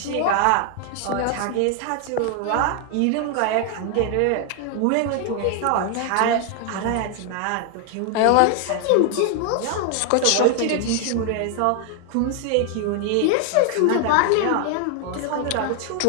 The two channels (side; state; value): both; different; correlation 0.00